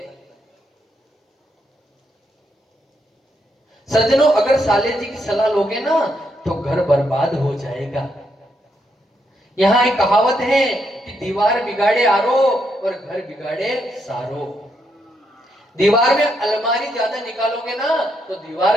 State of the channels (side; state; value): both; normal; correlation 0.78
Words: हैं। सज्जनों, अगर साले जी की सलाह लोगे ना तो घर बर्बाद हो जाएगा। यहाँ एक कहावत है कि दीवार बिगाड़े आरो और घर बिगाड़े सारो। दीवार में अलमारी ज्यादा निकालोगे ना तो